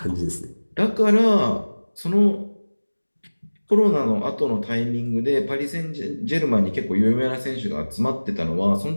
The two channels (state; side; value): inverted; both; correlation -1.00